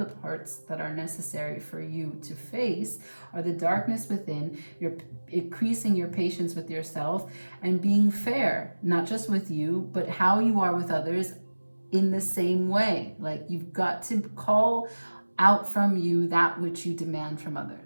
the parts that are necessary for you to face are the darkness within. You're increasing your patience with yourself and being fair, not just with you, but how you are with others in the same way. Like, you've got to call out from you that which you demand from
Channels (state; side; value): inverted; both; correlation -1.00